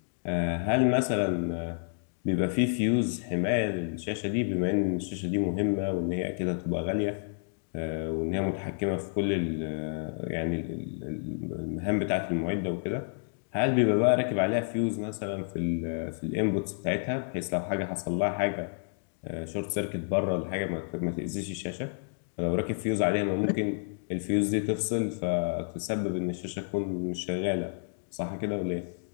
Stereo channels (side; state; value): right; silent; digital silence